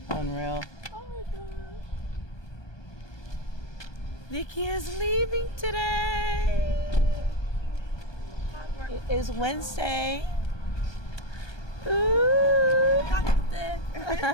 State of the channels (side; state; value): right; late; 1.2 ms